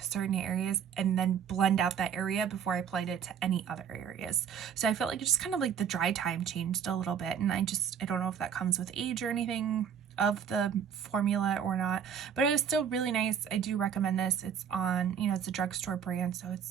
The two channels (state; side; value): quieter; left; 7.9 dB